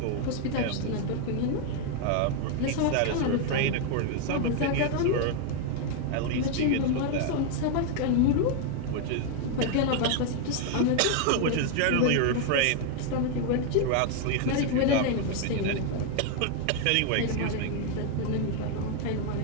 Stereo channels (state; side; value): different; both; correlation 0.00